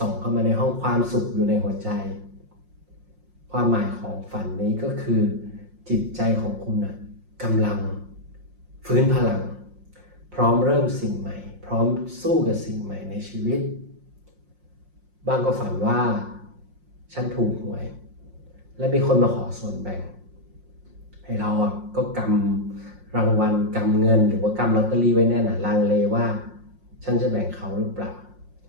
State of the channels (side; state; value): left; late; 5.6 ms